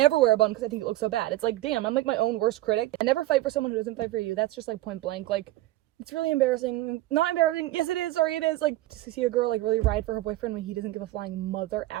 wear a bun because I think it looks so bad. It's like, damn, I'm like my own worst critic. I never fight for someone who doesn't fight for you. That's just, like, point blank. Like, it's really embarrassing. Not embarrassing. Yes, it is. Sorry, it is. Like, to see a girl, like, really ride for her boyfriend when he doesn't give a flying mother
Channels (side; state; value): left; quieter; 16.5 dB